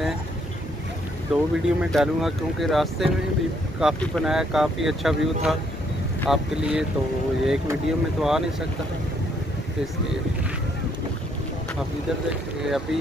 2 वीडियो में डालूँगा, क्योंकि रास्ते में भी काफ़ी बनाया, काफ़ी अच्छा व्यू था आपके लिए, तो ये एक वीडियो में तो आ नहीं सकता, तो इसलिए आप इधर देखिए अभी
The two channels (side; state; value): both; normal; correlation 0.70